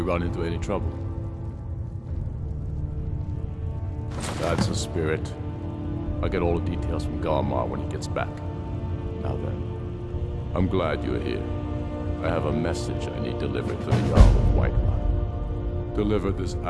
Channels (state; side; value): identical; both; correlation 1.00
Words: run into any trouble? That's a spirit. I'll get all the details from Galmar when he gets back. Now then, I'm glad you're here. I have a message I need delivered to the Jarl of Whiterun. Deliver this